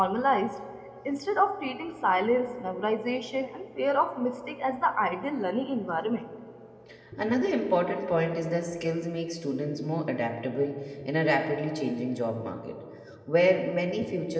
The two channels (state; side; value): identical; both; correlation 1.00